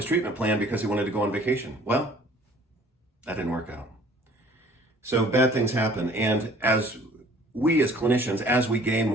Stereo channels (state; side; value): normal; both; correlation 0.53